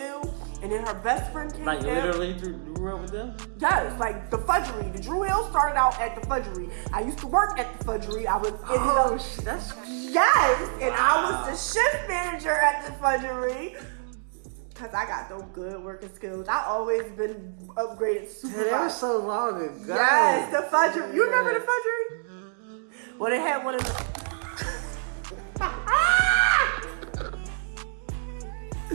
and then her best friend came Like down. literally grew up with them? Yes, like the Fudgery. The Drew Hill started out at the Fudgery. I used to work at the Fudgery. I was That's yes, and I was the shift manager at the Fudgery. Cause I got those good working skills. I always been upgraded supervisor. that was so long ago. Yes, the Fudgery. You remember the Fudgery? Well, they had one of the.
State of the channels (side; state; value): left; silent; digital silence